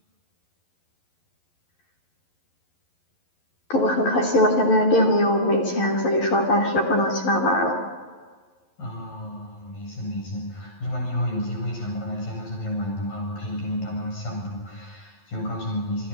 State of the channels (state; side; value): late; right; 11 ms